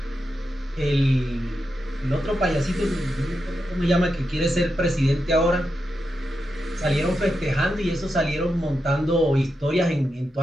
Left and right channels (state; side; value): normal; both; correlation 0.87